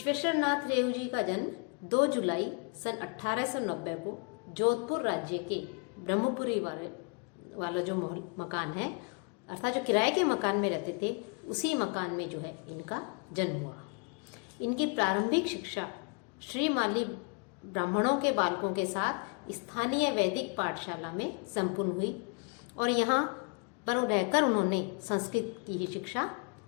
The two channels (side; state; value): right; quieter; 35.1 dB